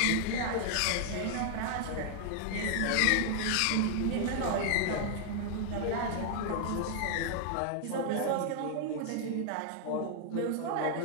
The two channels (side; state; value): both; different; correlation 0.00